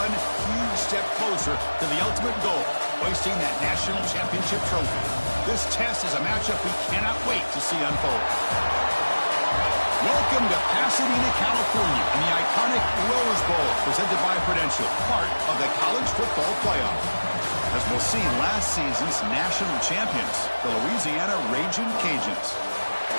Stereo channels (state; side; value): inverted; both; correlation -1.00